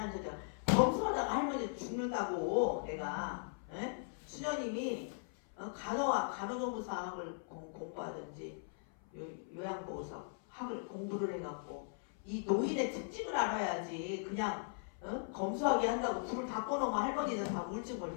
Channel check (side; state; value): right; silent; 52 dB below the other